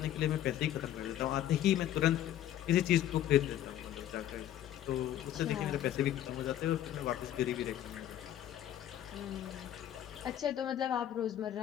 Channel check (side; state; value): right; quieter; 11.8 dB